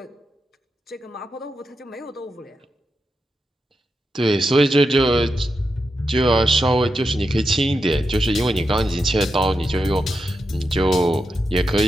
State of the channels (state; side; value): normal; both; correlation 0.86